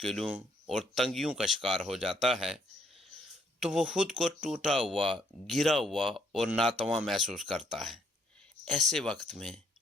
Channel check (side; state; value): both; normal; correlation 0.69